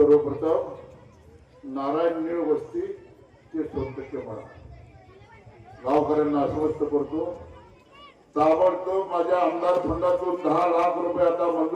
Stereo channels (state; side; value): identical; both; correlation 1.00